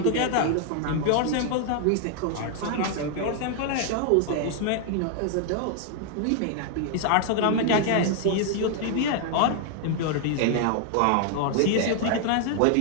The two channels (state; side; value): different; both; correlation 0.00